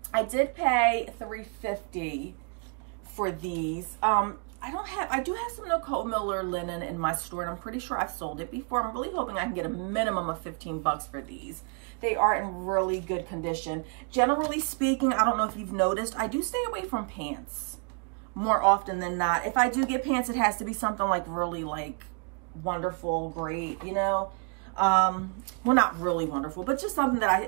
I did pay $3.50 for these. I do have some Nicole Miller linen in my store, and I'm pretty sure I've sold it before. I'm really hoping I can get a minimum of 15 bucks for these. They are in really good condition. Generally speaking, I don't know if you've noticed, I do stay away from pants more often than not. If I do get pants, it has to be something like really like wonderful, great, you know. Well, not really wonderful, but just something that I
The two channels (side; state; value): left; quieter; 36.6 dB